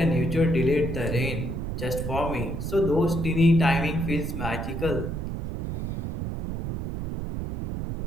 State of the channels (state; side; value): noise; right; rumble, 3 dB below the sound